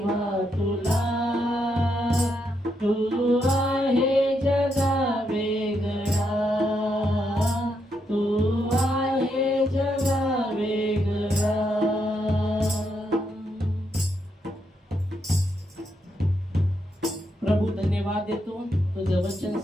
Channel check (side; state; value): both; normal; correlation 0.80